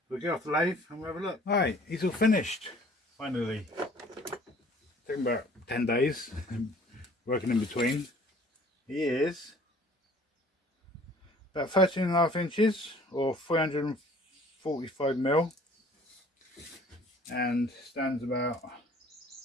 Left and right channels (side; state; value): both; normal; correlation 0.53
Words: We'll get off the lathe and we'll have a look. Alright, he's all finished. Finally. Taking about 10 days. Working in between. He is about 13.5 inches or 345 mil. And stands about